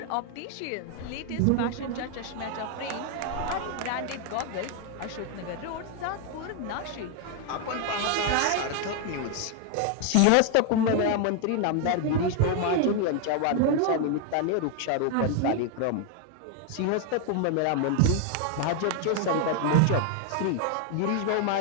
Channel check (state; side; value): different; both; correlation 0.00